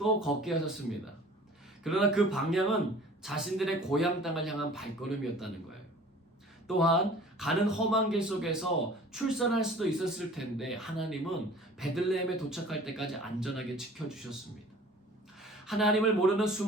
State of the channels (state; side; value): normal; both; correlation 0.47